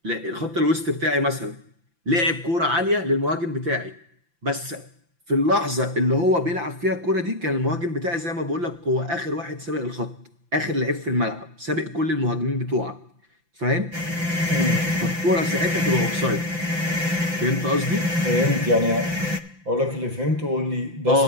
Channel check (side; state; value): left; late; 5.9 ms